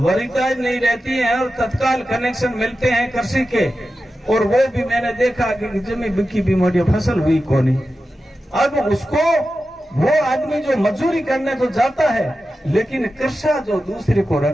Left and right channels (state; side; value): normal; both; correlation 0.92